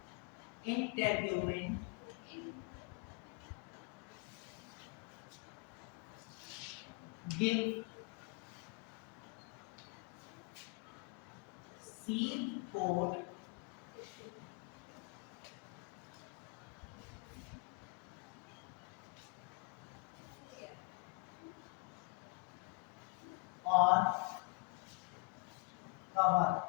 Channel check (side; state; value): right; quieter; 28.7 dB